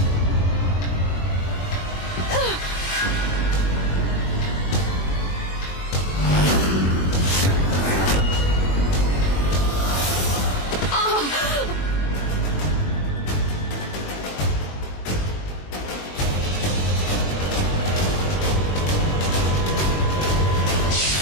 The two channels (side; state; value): right; late; 21 ms